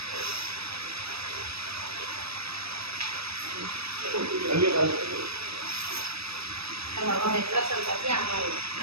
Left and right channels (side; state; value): left; late; 0.78 ms